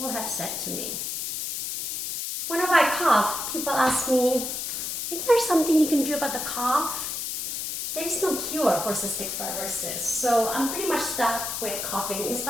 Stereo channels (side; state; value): left; noise; hiss, 4 dB below the sound